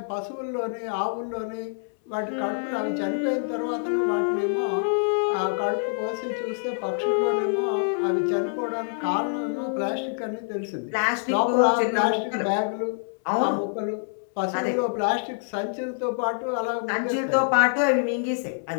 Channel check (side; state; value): right; silent; 61 dB below the other